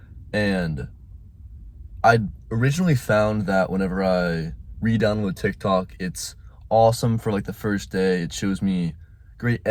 and I originally found that whenever I re-download TikTok, it's awesome for like the first day. It shows me great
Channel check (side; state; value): both; identical; correlation 1.00